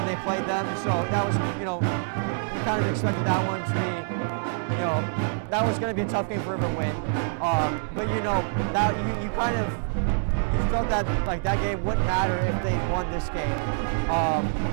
they played them. So that was you kind of expected that one to be. That was going to be a tough game for River to win. But that you kind of felt that that game wouldn't matter if they won this game.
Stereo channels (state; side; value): silent; left; digital silence